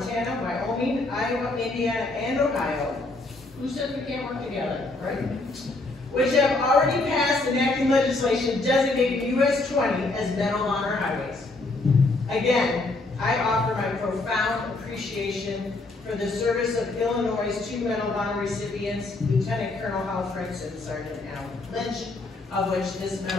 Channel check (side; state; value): right; quieter; 3.1 dB